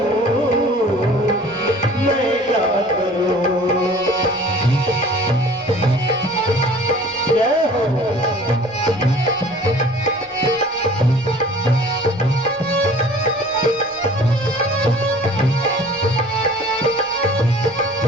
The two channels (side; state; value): both; normal; correlation 0.47